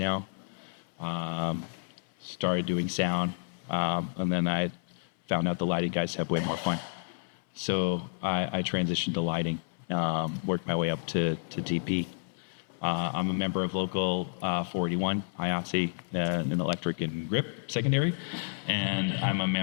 Started doing sound, and then I found out the lighting guys have way more fun. So I transitioned to lighting, worked my way up to DP. I'm a member of Local 481, IATSE, in electric and grip secondary, and I'm a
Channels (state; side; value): silent; right; 58 dB below the other